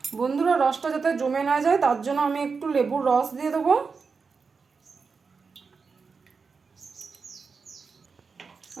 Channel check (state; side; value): quieter; left; 5.0 dB